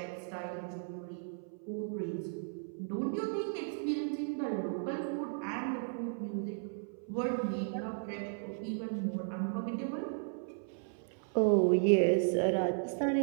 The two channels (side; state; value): left; silent; 54 dB below the other